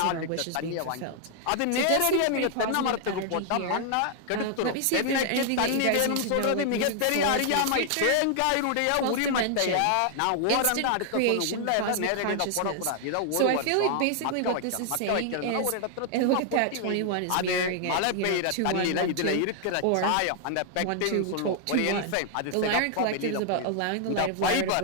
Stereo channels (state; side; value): different; both; correlation 0.00